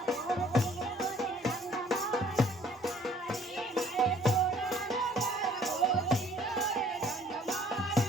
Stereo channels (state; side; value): normal; both; correlation 0.58